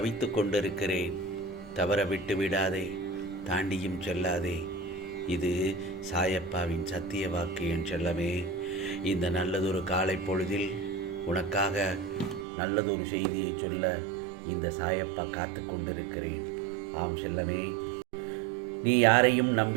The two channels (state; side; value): drops out; left; at 12.5 s